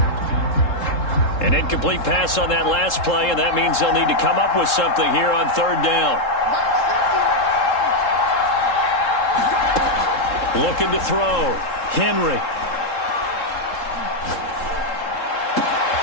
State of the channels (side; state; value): right; late; 3.7 ms